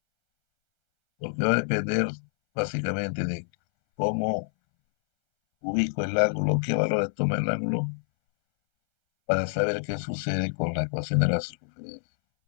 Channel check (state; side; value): silent; right; 59 dB below the other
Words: porque va a depender básicamente de cómo ubico el ángulo, qué valores toma el ángulo, para saber qué sucede con la ecuación de la circunferencia.